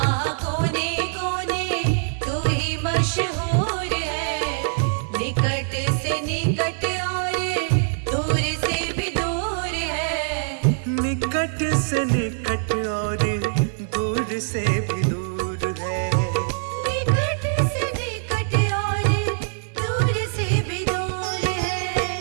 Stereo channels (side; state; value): left; silent; digital silence